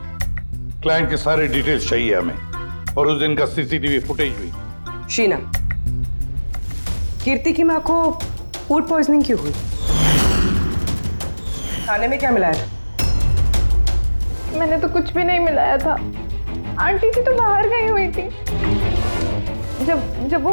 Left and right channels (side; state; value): both; inverted; correlation -1.00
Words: क्लाइंट के सारे डिटेल्स चाहिए हमें, और उस दिन का सीसीटीवी फुटेज भी। शीना, कीर्ति की माँ को फूड पॉइजनिंग क्यों हुई? खाने में क्या मिलाया था? मैंने तो कुछ भी नहीं मिलाया था। आंटी जी तो बाहर गई हुई थी। जब